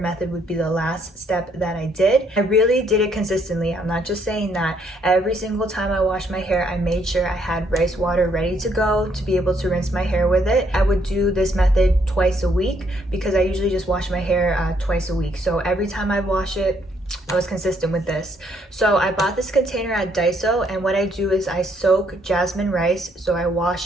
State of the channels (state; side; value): normal; both; correlation 0.70